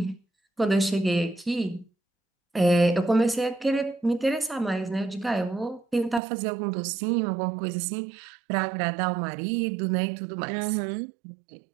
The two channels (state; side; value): drops out; left; at 6.2 s